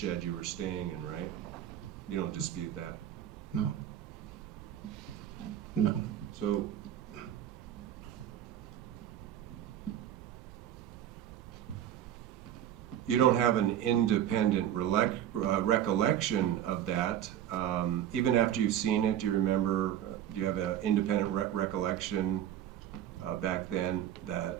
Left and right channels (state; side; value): quieter; left; 10.9 dB